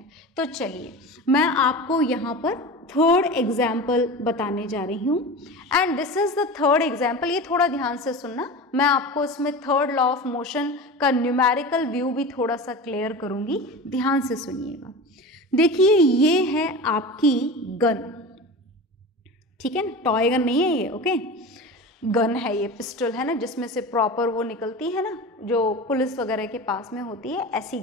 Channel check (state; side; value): normal; both; correlation 0.30